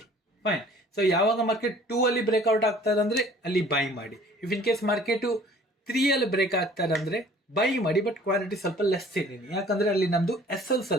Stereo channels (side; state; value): both; normal; correlation 0.52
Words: ಫೈನ್. ಸೊ ಯಾವಾಗ ಮಾರ್ಕೆಟ್ 2 ಅಲ್ಲಿ ಬ್ರೇಕ್ಔಟ್ ಆಗ್ತಾರೆ ಅಂದ್ರೆ ಅಲ್ಲಿ ಬೈ ಮಾಡಿ. ಇಫ್ ಇನ್ ಕೇಸ್ ಮಾರ್ಕೆಟು 3 ಅಲ್ಲಿ ಬ್ರೇಕ್ ಆಗ್ತಾರೆ ಅಂದ್ರೆ ಬೈ ಮಾಡಿ, ಬಟ್ ಕ್ವಾಲಿಟಿ ಸ್ವಲ್ಪ ಲೆಸ್ ಇದ್ದೀನಿ, ಯಾಕಂದ್ರೆ ಅಲ್ಲಿ ನಮ್ದು SL